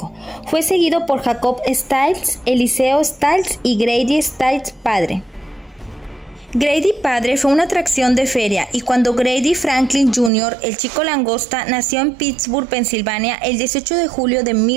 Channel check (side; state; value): left; drops out; at 10.3 s